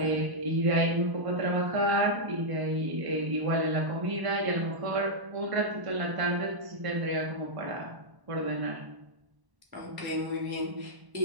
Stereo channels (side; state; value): left; late; 1.1 ms